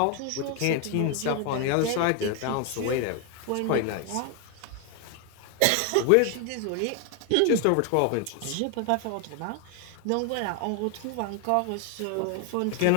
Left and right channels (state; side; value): different; both; correlation 0.01